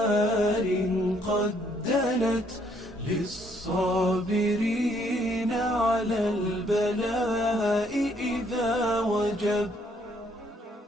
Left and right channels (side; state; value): both; normal; correlation 0.67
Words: قد دنت للصابرين على البلاء إذا وجب.